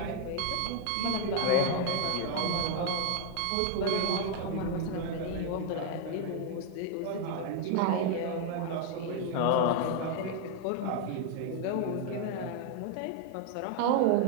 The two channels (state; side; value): different; both; correlation 0.00